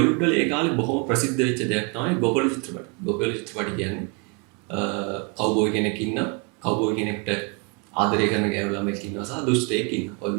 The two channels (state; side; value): quieter; left; 34.1 dB